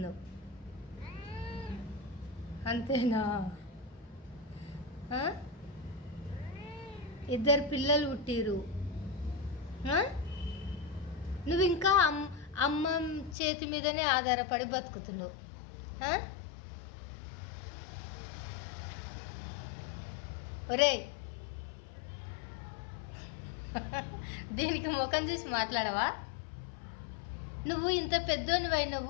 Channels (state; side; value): drops out; right; at 13.4 s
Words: అంతేనా? ఇద్దరు పిల్లలు పుట్టిరు. నువ్వు ఇంకా అమ్మ చేతి మీదనే ఆధారపడి బతుకుతున్నావు. ఒరే, దీనికి ముఖం చూసి మాట్లాడవా? నువ్వు ఇంత పెద్దోనివై